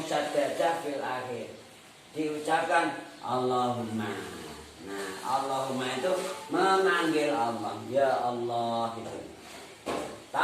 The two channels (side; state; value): both; identical; correlation 1.00